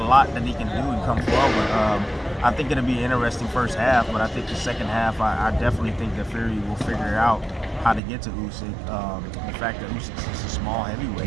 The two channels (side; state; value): left; drops out; at 8.0 s